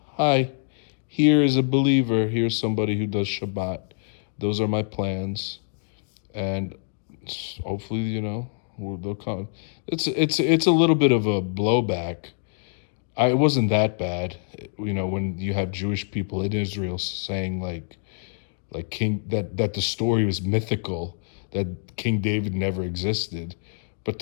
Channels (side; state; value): right; silent; digital silence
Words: hi, here is a believer. Here's somebody who does Shabbat. Those are my plans. And hopefully, they'll come. It's a little bit of a blowback. It wasn't that bad, when you have Jewish people in Israel saying like King that the story was mythical, that King David never existed. But